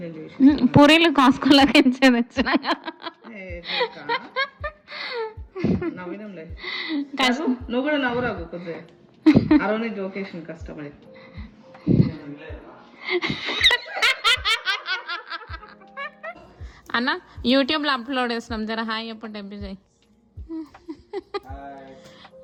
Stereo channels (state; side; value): identical; both; correlation 1.00